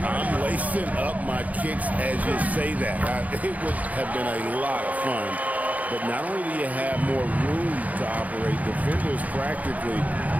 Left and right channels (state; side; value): late; left; 0.075 ms